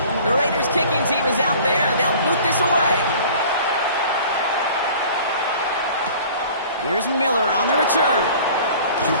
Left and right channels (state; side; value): inverted; both; correlation -0.46